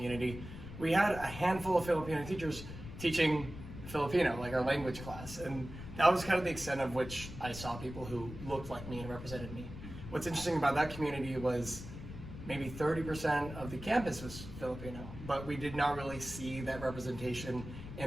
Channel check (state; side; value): noise; left; rumble, 11 dB below the sound